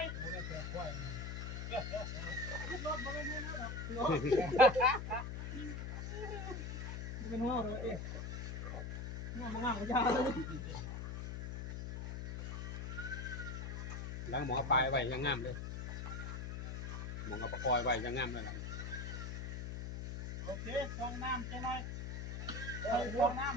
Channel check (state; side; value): noise; left; hum, 4 dB below the sound